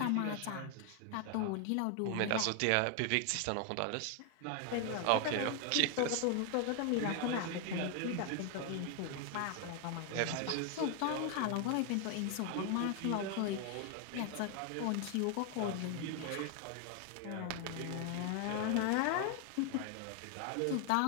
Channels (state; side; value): different; both; correlation 0.00